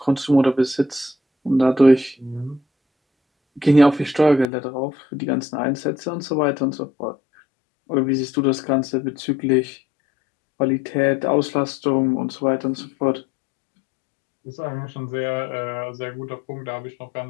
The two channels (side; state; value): right; drops out; at 4.5 s